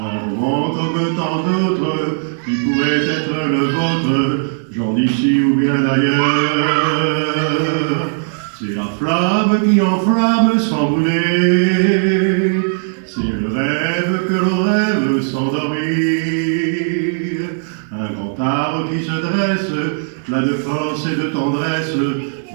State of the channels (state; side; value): silent; left; digital silence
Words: roman comme tant d'autres qui pourrait être le vôtre, genre d'ici ou bien d'ailleurs. C'est la flamme qui enflamme sans brûler. C'est le rêve que l'on rêve sans dormir. Un grand arbre qui se dresse, plein de force et de tendresse,